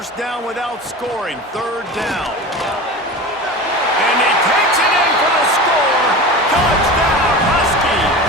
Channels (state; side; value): normal; both; correlation 0.31